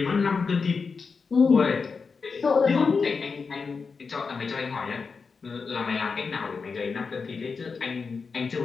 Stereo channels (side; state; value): right; quieter; 5.0 dB